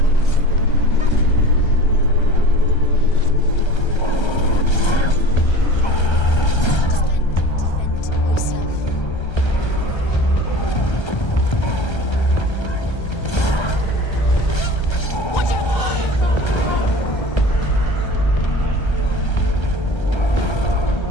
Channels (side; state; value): right; late; 1.3 ms